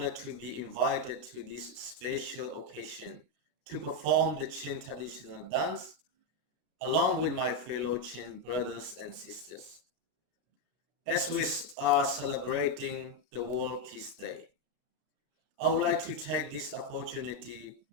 to be invited to this special occasion to perform the Chin traditional dance along with my fellow Chin brothers and sisters. As we are celebrating the World Peace Day, I would like to take this opportunity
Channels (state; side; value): late; left; 32 ms